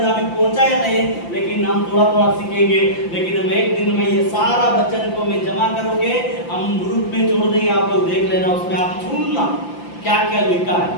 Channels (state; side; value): late; right; 5.8 ms